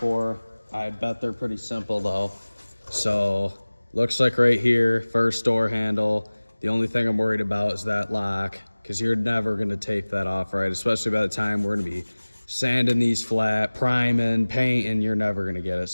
I bet they're pretty simple though. So looks like right here, first door handle. The only thing I'm worried about is that lock, because you're never gonna tape that off right, especially by the time we're gonna be sanding these flat, priming, painting, you're never gonna get it.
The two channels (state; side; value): inverted; both; correlation -1.00